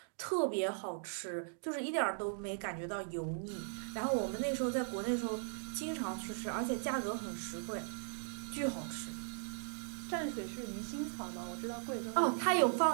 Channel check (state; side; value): silent; left; digital silence